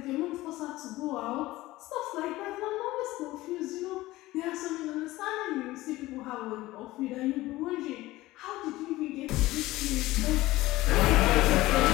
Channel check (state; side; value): quieter; right; 17.9 dB